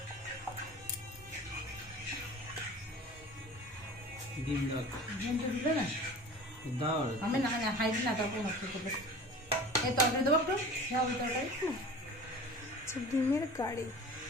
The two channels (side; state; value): both; normal; correlation 0.39